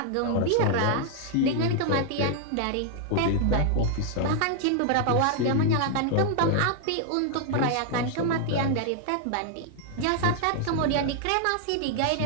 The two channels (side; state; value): both; different; correlation 0.00